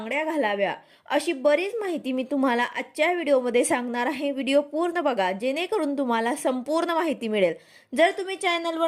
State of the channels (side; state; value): both; identical; correlation 1.00